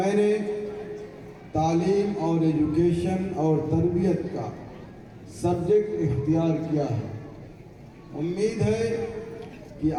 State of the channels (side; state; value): both; identical; correlation 1.00